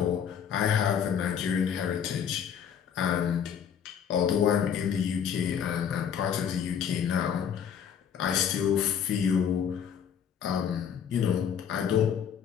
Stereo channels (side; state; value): right; quieter; 8.1 dB